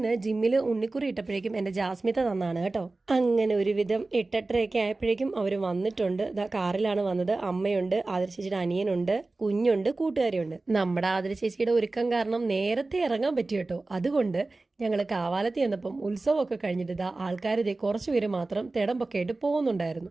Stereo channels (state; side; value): quieter; left; 3.3 dB